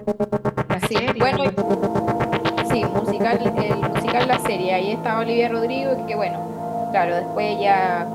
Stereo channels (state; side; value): identical; both; correlation 1.00